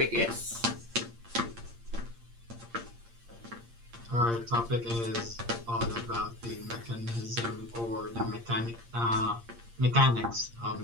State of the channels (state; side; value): late; left; 8.6 ms